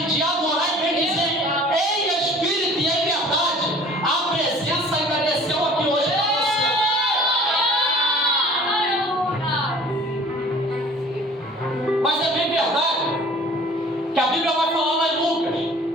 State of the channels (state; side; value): normal; both; correlation 0.48